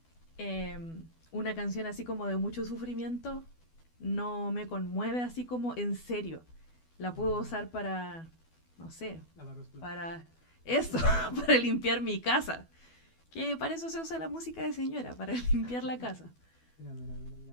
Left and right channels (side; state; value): right; late; 12 ms